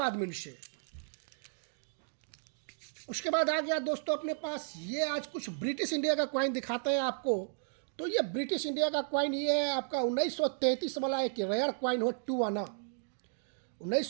मिंट से। उसके बाद आ गया दोस्तों अपने पास ये, आज कुछ ब्रिटिश इंडिया का क्वाइन दिखाते हैं आपको। तो ये ब्रिटिश इंडिया का क्वाइन ये है आपका 1933 वाला एक रेयर क्वाइन हो, 2 आना।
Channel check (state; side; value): silent; left; digital silence